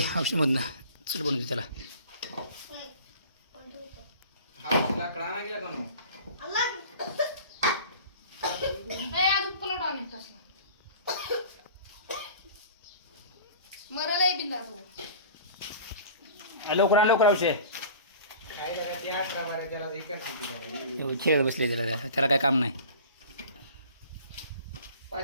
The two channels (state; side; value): inverted; both; correlation -0.42